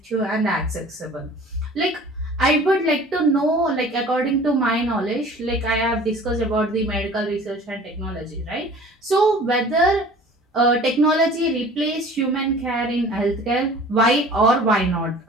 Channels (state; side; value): normal; both; correlation 0.46